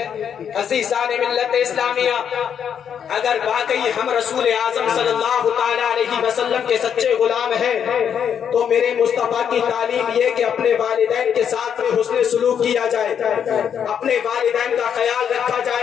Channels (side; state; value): right; quieter; 8.1 dB